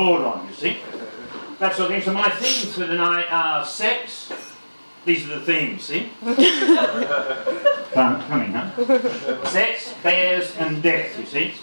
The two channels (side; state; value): both; inverted; correlation -1.00